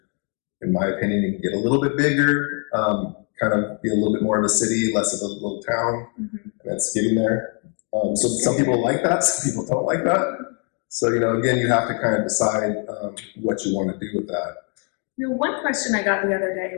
In my opinion, it can get a little bit bigger, kind of be a little bit more of a city, less of a little town, and it's getting there. So some people like that, some people don't like that. So, you know, again, you have to kind of decide what you want to do with that. You know, one question I got the other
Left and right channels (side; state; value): right; quieter; 39.3 dB